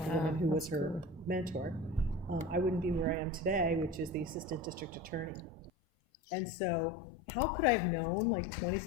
the woman who was her mentor, I wouldn't be where I am today, which is the assistant district attorney. And so how could I have known, like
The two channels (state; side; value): drops out; right; at 5.7 s